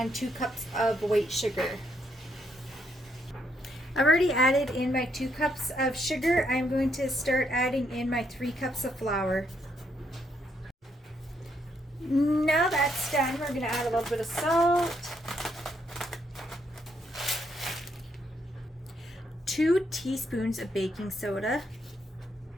2 cups of white sugar. I've already added in my 2 cups of sugar. I'm going to start adding in my 3 cups of flour. Now that's done, we're going to add a little bit of salt, 2 teaspoons of baking soda,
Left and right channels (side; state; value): both; normal; correlation 0.75